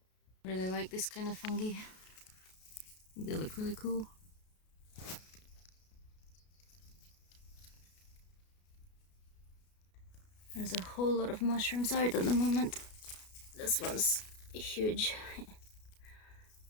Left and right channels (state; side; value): late; right; 33 ms